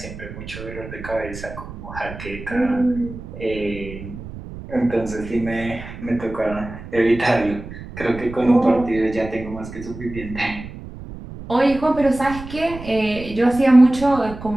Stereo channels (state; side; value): noise; right; rumble, 12 dB below the sound